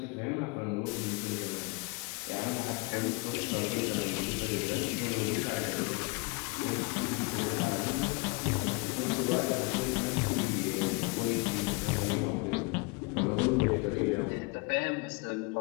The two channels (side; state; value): right; quieter; 28.7 dB